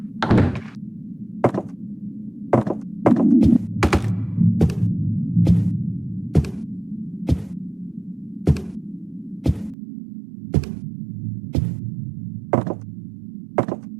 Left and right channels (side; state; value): left; drops out; at 9.8 s